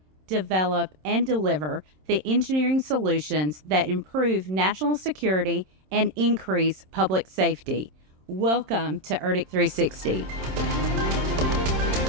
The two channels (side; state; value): left; late; 27 ms